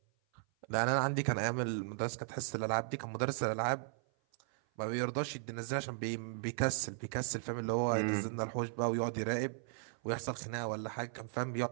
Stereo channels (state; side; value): silent; left; 53 dB below the other